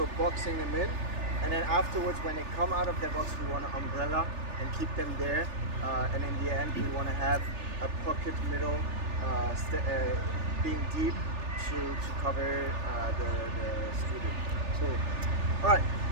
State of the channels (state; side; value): late; left; 3.4 ms